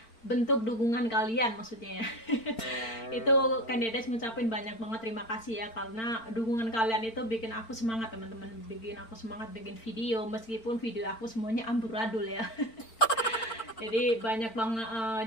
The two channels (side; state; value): right; late; 4.4 ms